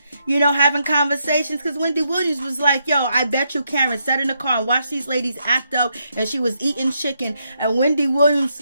having conversations, because Wendy Williams was like, yo, I bet you Karen sat in the car and watched these ladies act up, and she was eating chicken, and Wendy Williams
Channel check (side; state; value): both; inverted; correlation -0.79